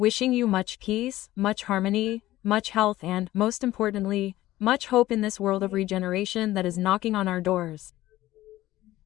you much peace, much harmony, much health and, most importantly, much hope in this world of regeneration that is knocking on our doors.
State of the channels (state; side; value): quieter; right; 15.7 dB